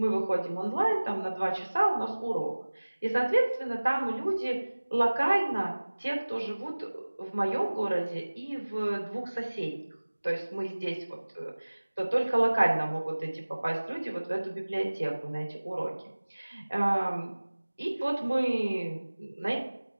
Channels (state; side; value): inverted; both; correlation -1.00